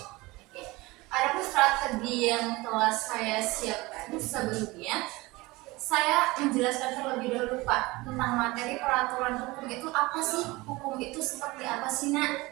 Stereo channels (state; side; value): quieter; left; 21.7 dB